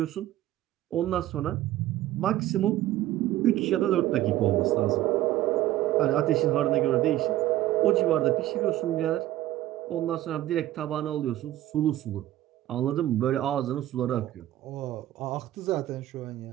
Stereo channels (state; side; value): quieter; left; 14.3 dB